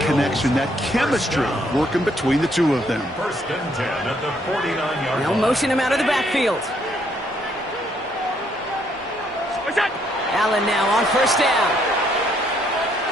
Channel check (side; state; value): both; normal; correlation 0.70